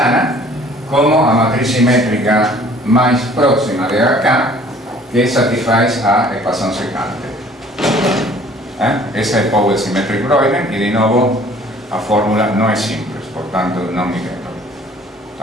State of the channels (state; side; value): normal; both; correlation 0.53